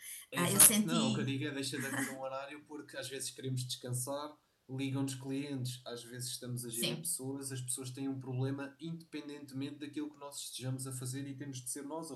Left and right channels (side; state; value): both; identical; correlation 1.00